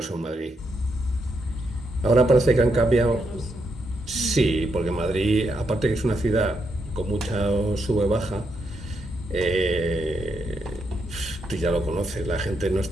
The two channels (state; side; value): normal; both; correlation 0.80